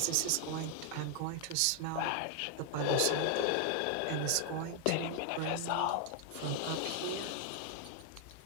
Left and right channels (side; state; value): both; different; correlation 0.00